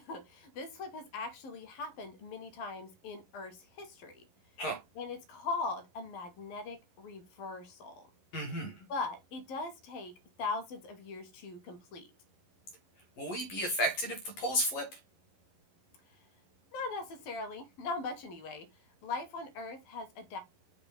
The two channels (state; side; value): late; right; 11 ms